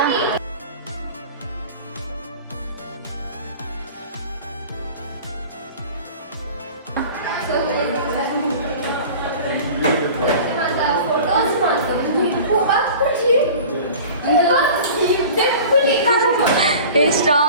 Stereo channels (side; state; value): both; inverted; correlation -0.40